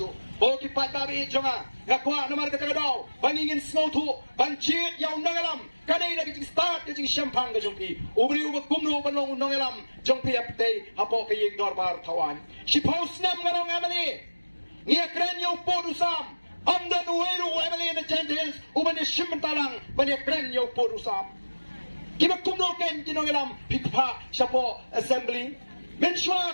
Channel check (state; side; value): inverted; both; correlation -1.00